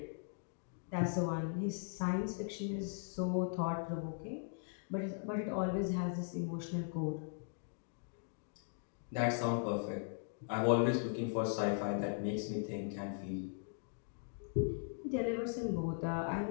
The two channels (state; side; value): silent; right; digital silence